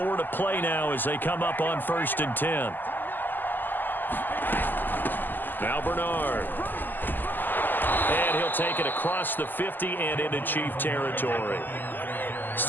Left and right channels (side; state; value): right; late; 0.089 ms